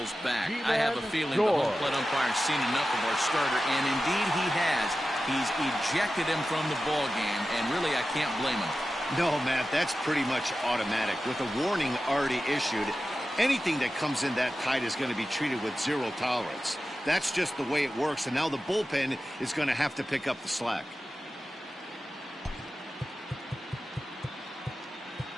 back. I have a feeling the home plate umpire's seen enough of our starter, and indeed he has. He's ejected him from the ball game, and really I can't blame him. No, Matt, that's pretty much automatic. With a warning already issued, anything that comes in that tight is going to be treated with 0 tolerance. That's just the way it works, and now the bullpen is going to have to pick up the slack.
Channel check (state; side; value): normal; both; correlation 0.93